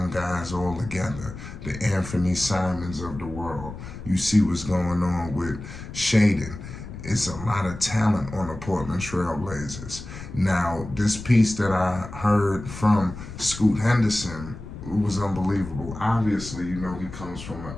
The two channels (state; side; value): noise; left; rumble, 12 dB below the sound